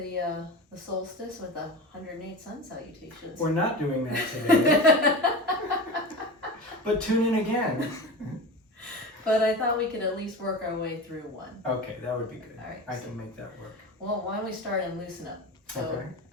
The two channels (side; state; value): both; normal; correlation 0.29